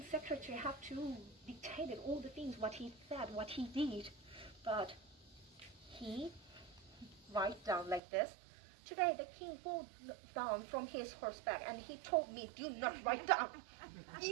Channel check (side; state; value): left; drops out; at 8.0 s